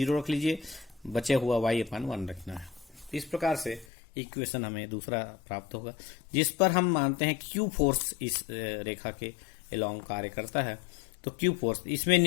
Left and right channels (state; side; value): drops out; right; at 3.9 s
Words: रख लीजिए, बचे हुआ y अपान 1 रखना है। इस प्रकार से इक्वेशन हमें दूसरा प्राप्त होगा जिस पर हम मानते हैं q फोर्स इस रेखा के एलोंग कार्य करता है। तो क्यू फोर्स, इसमें